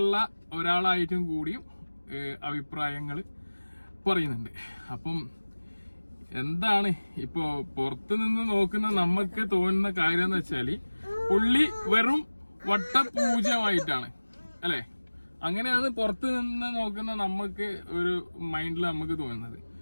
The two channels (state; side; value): inverted; both; correlation -1.00